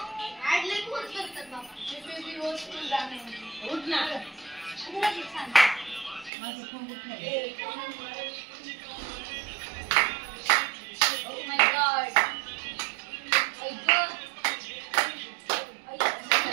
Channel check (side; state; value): left; drops out; at 6.3 s